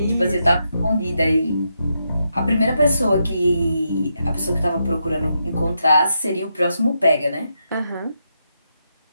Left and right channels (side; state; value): both; inverted; correlation -0.83